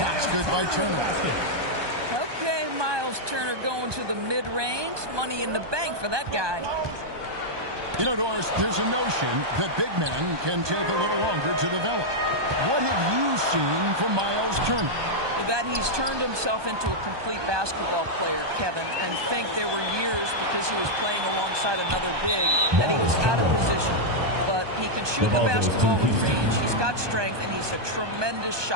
good by Turner. Okay, Miles Turner going to the mid-range. Money in the bank for that guy. You know, Doris, there's a notion that big men can take a little longer to develop. What have you seen from Miles Turner? That he's turned himself into a complete basketball player, Kevin, and think there were years because he was playing alongside another big that he was out of position. But he can shoot the basketball with range, he's got strength, and he's a tremendous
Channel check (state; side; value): late; left; 1.2 ms